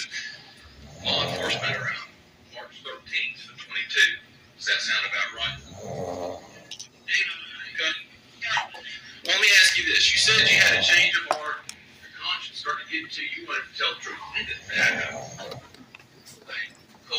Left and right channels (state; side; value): identical; both; correlation 1.00